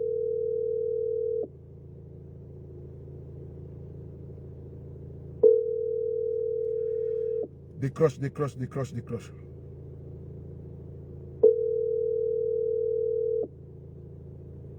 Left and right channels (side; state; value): both; identical; correlation 1.00